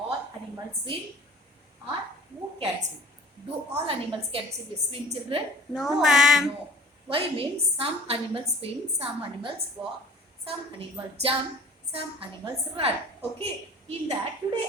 animals swim or who can swim? Do all animals can swim children? No, ma'am. No. Why means some animals swim, some animals walk, some animals jump, some animals run. Okay, in that today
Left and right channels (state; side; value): normal; both; correlation 0.47